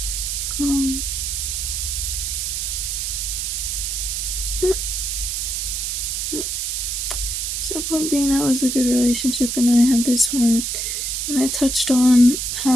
Um, so point being, that was a good relationship, and I have this one, and I touched on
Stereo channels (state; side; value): noise; right; hiss, 1 dB below the sound